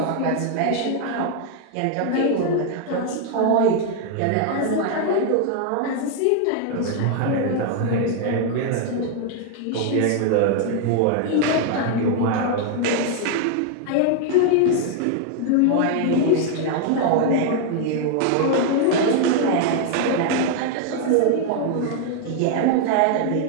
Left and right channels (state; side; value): different; both; correlation 0.00